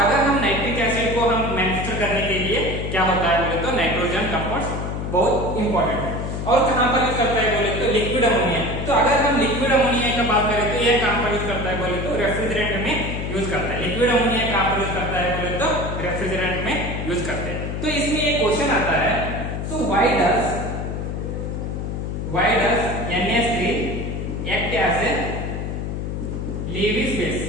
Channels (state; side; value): noise; left; hum, 4 dB below the sound